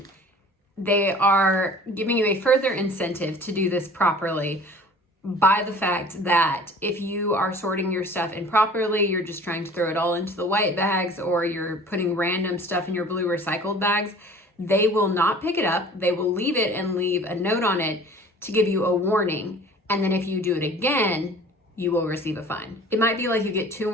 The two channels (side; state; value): both; normal; correlation 0.46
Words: they are giving you a further incentive to do this properly by the fact that if you are sorting your stuff improperly, you're just trying to throw it all into the white bags, or you're putting random stuff in your blue recycled bags, they will not pick it up. They will leave it and leave a note on it to give you a warning. And then if you do it again, you will receive a fine. It might be like you get 2